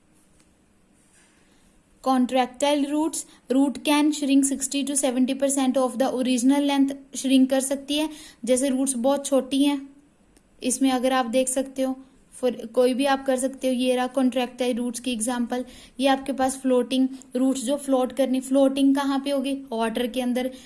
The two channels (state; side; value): identical; both; correlation 1.00